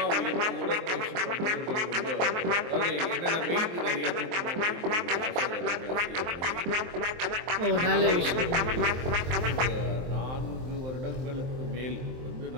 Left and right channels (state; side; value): late; left; 23 ms